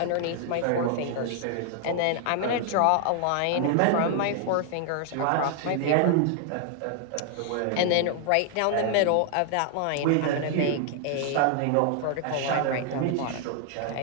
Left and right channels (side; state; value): both; different; correlation 0.00